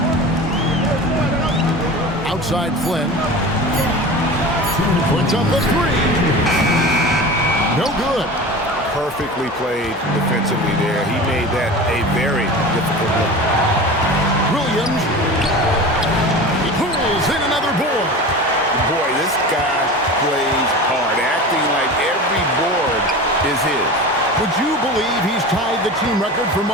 Outside Flynn. Puts up the 3. No good. Perfectly played defensively there. He made that a very difficult look. Williams. He pulls in another board. Boy, this guy plays hard, acting like every board is his. Would you believe he's tied the team record for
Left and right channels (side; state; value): both; normal; correlation 0.33